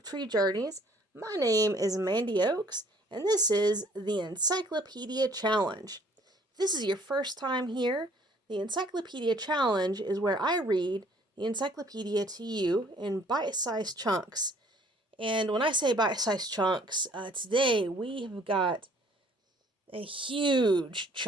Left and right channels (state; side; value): normal; both; correlation 0.59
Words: Tree Journeys. My name is Mandy Oaks, and this is the Encyclopedia Challenge. If this is your first time here, the Encyclopedia Challenge is where I read the encyclopedia to you in bite-sized chunks. And when I say bite-sized chunks, today we have got a huge